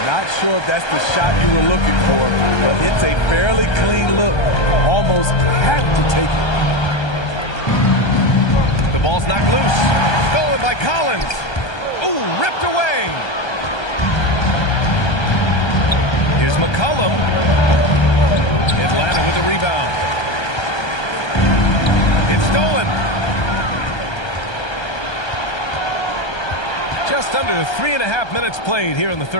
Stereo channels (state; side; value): late; right; 1.3 ms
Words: Not sure if that's the shot you were looking for, but it's a fairly clean look. Almost have to take it. The ball's knocked loose. Stolen by Collins. Ooh, ripped away. Here's McCollum. Atlanta with the rebound. It's stolen. Just under 3.5 minutes played here in the